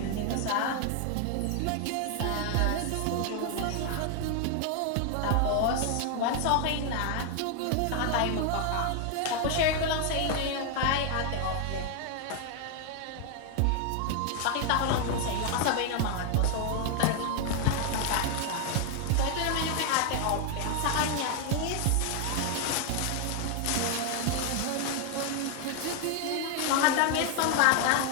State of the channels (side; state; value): both; different; correlation 0.01